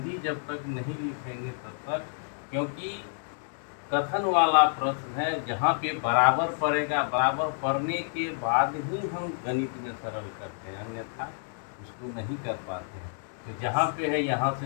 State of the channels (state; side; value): silent; right; digital silence